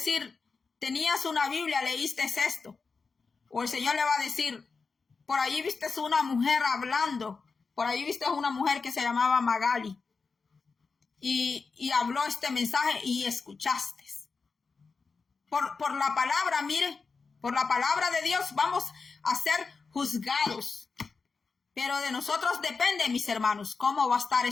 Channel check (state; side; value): quieter; right; 4.7 dB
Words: tenías una Biblia, leíste esto. O el Señor le va a decir, por ahí viste una mujer hablando. Por ahí viste una mujer que se llamaba Magali. Y habló este mensaje y escuchaste. Por la palabra, mire, por la palabra de Dios vamos a ser juzgados. Pero de nosotros depende, mis hermanos, cómo va a estar